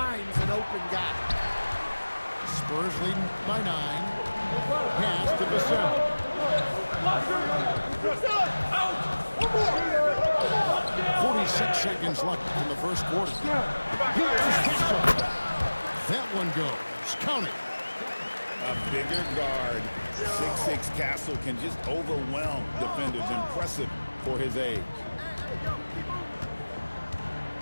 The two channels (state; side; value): inverted; both; correlation -1.00